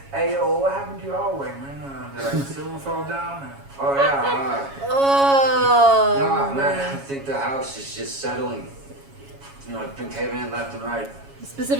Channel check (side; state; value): left; late; 7.2 ms